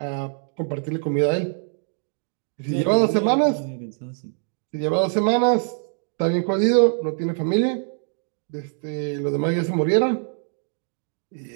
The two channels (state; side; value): silent; left; 61 dB below the other